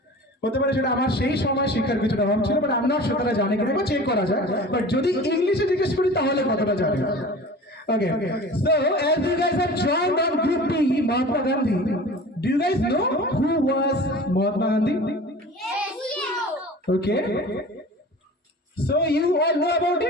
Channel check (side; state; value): both; normal; correlation 0.39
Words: হতে পারে সেটা আমার সেই সময় শিক্ষার কিছুটা অভাব ছিল, বাট আমি নট শিওর তারা জানে কিনা, চেক করা যায়। বাট যদি ইংলিশে জিজ্ঞেস করি তাহলে কতটা জানে। Okay, so as you guys have joined on Group B, Mahatma Gandhi, do you guys know who was Mahatma Gandhi? Yes. Okay. So you all know about